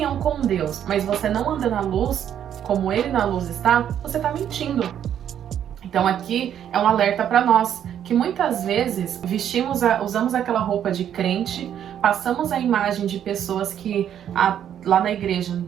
com Deus, mas você não anda na luz, como ele na luz está, você está mentindo. Então aqui é um alerta para nós, que muitas vezes usamos aquela roupa de crente, passamos a imagem de pessoas que lá na igreja,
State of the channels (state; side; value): quieter; left; 9.8 dB